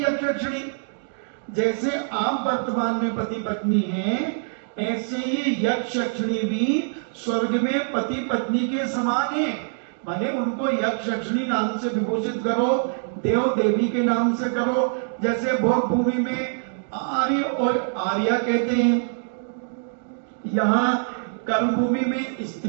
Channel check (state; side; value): silent; left; digital silence